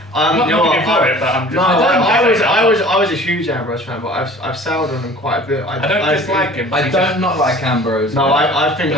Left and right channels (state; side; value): normal; both; correlation 0.46